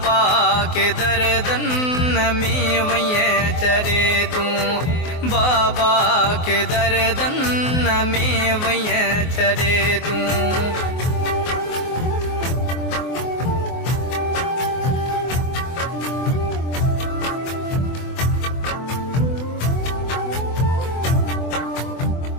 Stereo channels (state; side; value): late; right; 24 ms